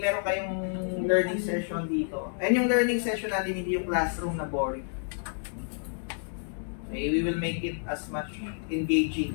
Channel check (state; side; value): silent; right; digital silence